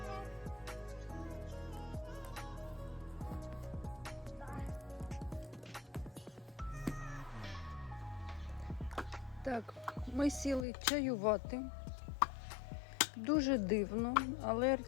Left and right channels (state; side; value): drops out; right; at 10.7 s